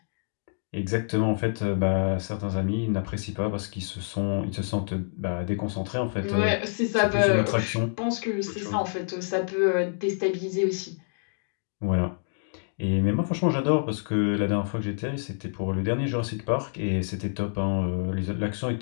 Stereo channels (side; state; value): right; silent; digital silence